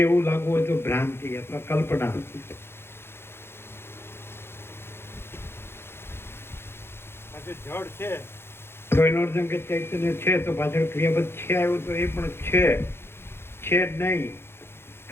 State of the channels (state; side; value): late; right; 0.11 ms